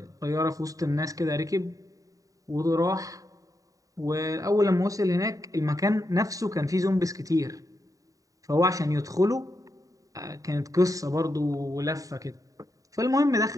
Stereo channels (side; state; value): left; late; 0.16 ms